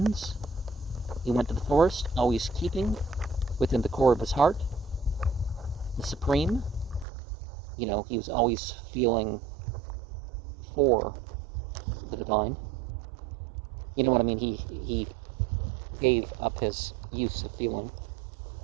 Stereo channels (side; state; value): left; drops out; at 7.1 s